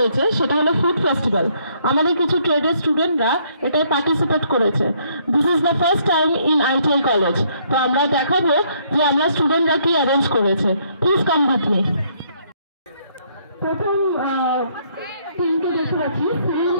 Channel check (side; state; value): both; inverted; correlation -0.68